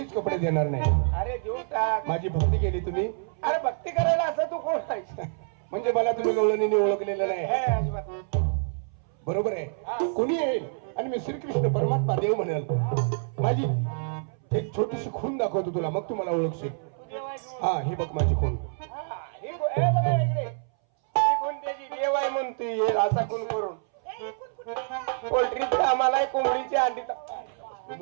कपडे देणार नाही. अरे देऊन टाक. माझी भक्ती केली तुम्ही, अरे भक्ती करायला असं तू कोण आहे? म्हणजे मला तुम्ही गवळणीने ओळखलेलं हे नाही. अजिबात नाही. बरोबर आहे. कुणी येईल आणि मी श्रीकृष्ण परमात्मा देव म्हणाल, माझी एक छोटीशी खून दाखवतो तुला, मग तू मला ओळखशील. तू देव आहेस म्हणून. हा, हे बघ माझी खून. हा, हे बघा इकडे. ही कोण त्याची देव आहे म्हणतोय असा कोण करून. पोल्ट्रीत कामाला कोंबडीची अंडी तू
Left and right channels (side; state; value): left; silent; 60 dB below the other